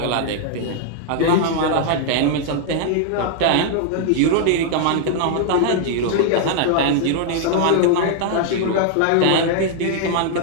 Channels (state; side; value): different; both; correlation 0.00